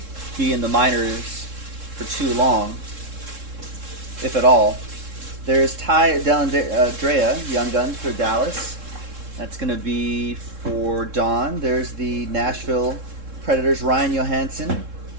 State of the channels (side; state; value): left; late; 3.7 ms